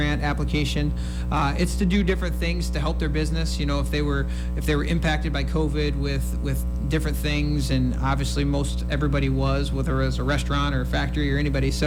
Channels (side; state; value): both; identical; correlation 1.00